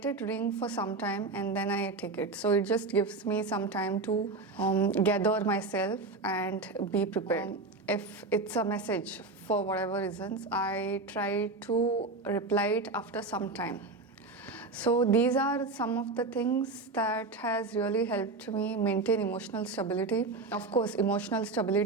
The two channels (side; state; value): left; quieter; 3.6 dB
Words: it ring for some time and then I take it. So it just gives me some time to gather myself and be prepared. If it's a message for whatever reasons, I try to reply it after some time. So these are some of the things that has really helped me maintain emotional stability. Of course, emotional